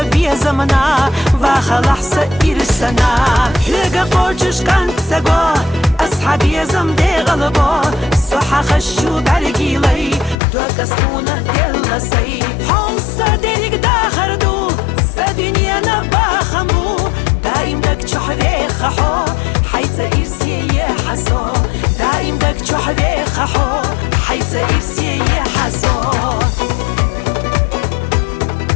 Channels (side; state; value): right; drops out; at 10.4 s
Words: زمنا وخلح سإرسنا هيقا قوشش كانت سقو أصحابي زمدي غلبو صحا خشو برقيلي دوك اسمونا دلسي حوصا ديريك داخردو سدنيا نباخمو دايم دك چحوي خحو حيث إرسي يحسو دايم دك چحوي خحو حيث إرسي يحسو